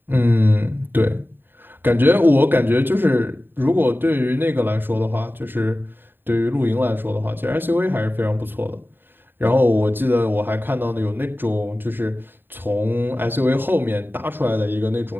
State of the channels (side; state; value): left; late; 0.095 ms